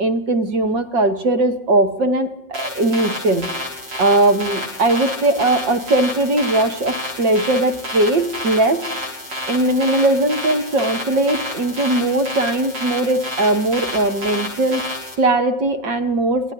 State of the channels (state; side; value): late; left; 6.1 ms